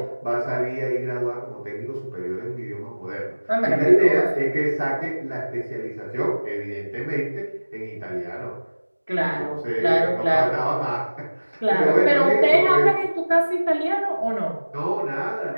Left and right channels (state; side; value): inverted; both; correlation -1.00